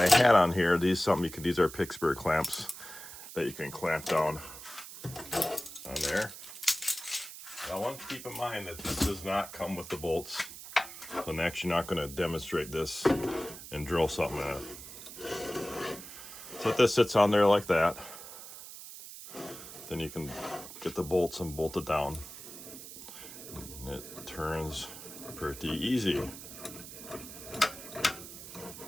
had on here. These are Pittsburgh clamps that you can clamp down on there. Now, I want to keep in mind that this does not come with the bolts. So I'm actually not going to demonstrate this and drill something in it. So this sits on there like that. Then you can get the bolts and bolt it down. And it turns pretty easy.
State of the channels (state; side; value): noise; right; hiss, 13 dB below the sound